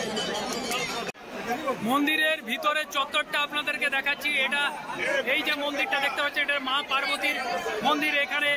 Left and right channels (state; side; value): identical; both; correlation 1.00